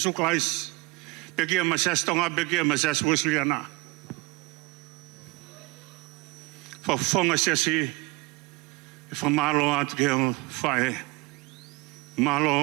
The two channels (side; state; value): left; quieter; 25.3 dB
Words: Pe kia ma siasi tonga, pe kia ma siasi Wesleyana. Whafonga siasi, e whamalo atu ke o whae.